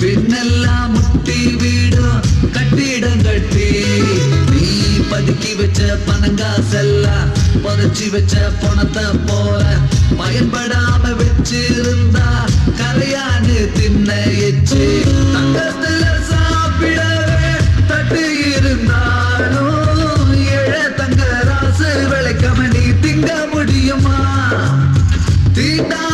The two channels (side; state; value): both; identical; correlation 1.00